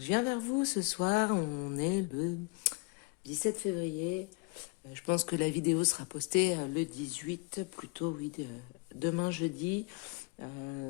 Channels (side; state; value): right; quieter; 29.9 dB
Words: viens vers vous ce soir, on est le 17 février. Je pense que la vidéo sera postée le 18, plutôt oui, demain jeudi,